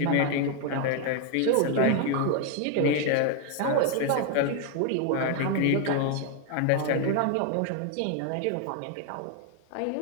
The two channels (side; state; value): both; different; correlation 0.01